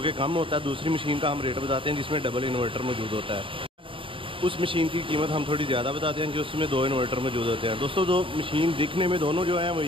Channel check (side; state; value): left; late; 0.25 ms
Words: कम होता है, दूसरी मशीन का हम रेट बताते हैं जिसमें डबल इन्वर्टर मौजूद होता है। उस मशीन की कीमत हम थोड़ी ज़्यादा बताते हैं कि उसमें दो इन्वर्टर मौजूद होते हैं। दोस्तों, दो मशीन दिखने में दोनों जो हैं वो